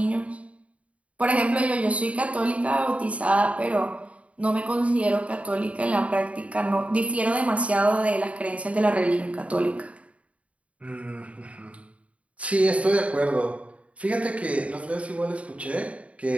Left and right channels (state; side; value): late; left; 0.065 ms